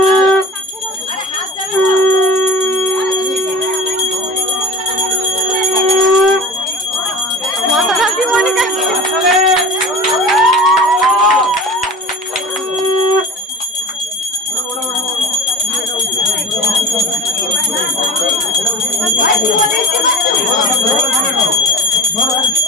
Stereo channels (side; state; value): both; normal; correlation 0.37